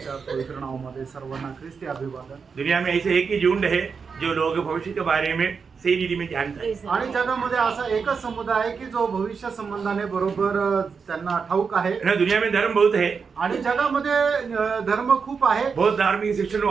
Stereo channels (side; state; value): left; quieter; 5.6 dB